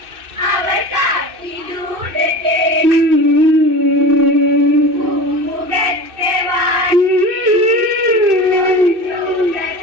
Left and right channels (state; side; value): late; left; 2.6 ms